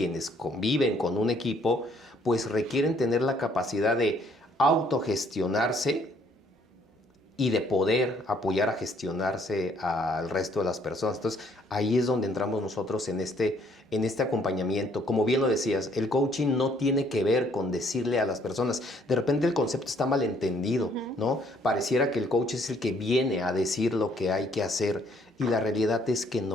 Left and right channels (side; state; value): both; normal; correlation 0.64